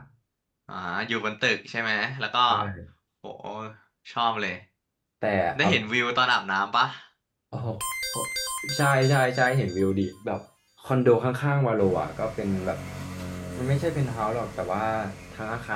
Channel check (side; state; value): both; identical; correlation 1.00